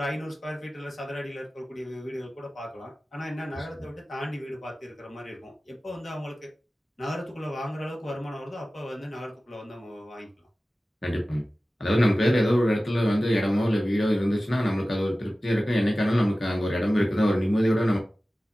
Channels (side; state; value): both; normal; correlation 0.96